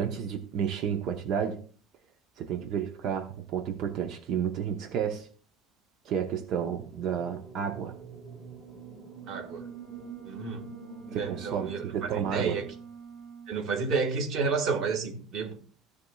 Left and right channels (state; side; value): quieter; left; 6.4 dB